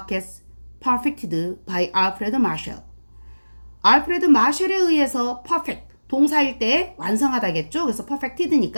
Perfected by Alfred Marshall. 알프레드 마셜에 의해서 perfect, 동사일 때 완성하다겠죠? 그래서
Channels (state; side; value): inverted; both; correlation -1.00